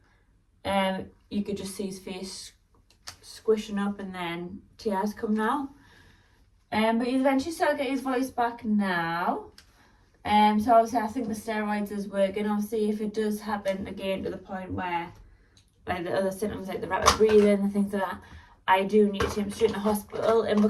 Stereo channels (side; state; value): both; identical; correlation 1.00